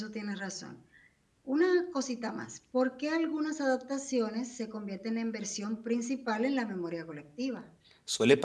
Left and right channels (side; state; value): both; identical; correlation 1.00